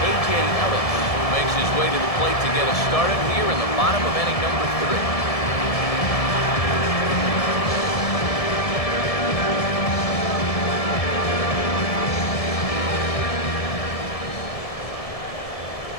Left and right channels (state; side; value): late; right; 1.7 ms